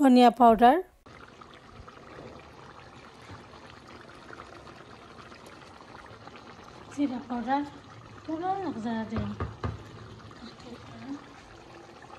পাউডার, জিরা পাউডার পুরো একজারা দিলাম,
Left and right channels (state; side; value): identical; both; correlation 1.00